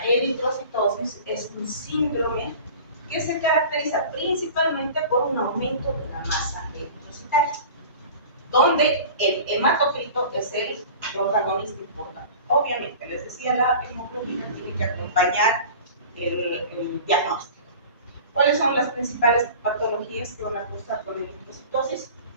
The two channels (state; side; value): inverted; both; correlation -0.39